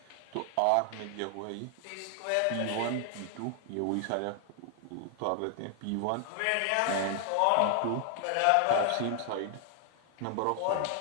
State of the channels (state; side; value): different; both; correlation 0.00